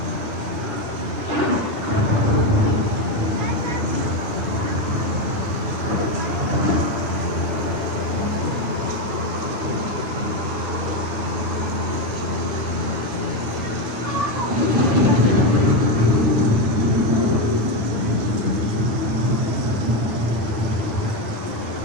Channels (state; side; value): late; left; 9.6 ms